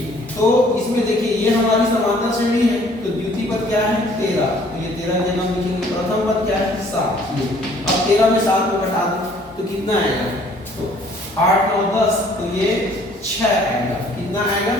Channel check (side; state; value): both; normal; correlation 0.58